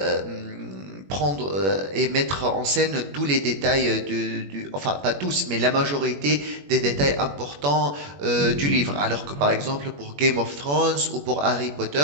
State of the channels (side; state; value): left; late; 21 ms